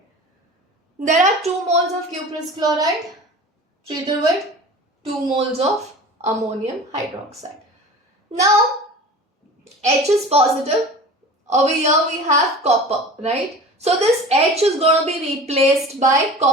There are 2 moles of cuprous chloride treated with 2 moles of ammonium hydroxide. Now, H is positive. Over here we have copper, right? So this H is going to be replaced by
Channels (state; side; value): normal; both; correlation 0.38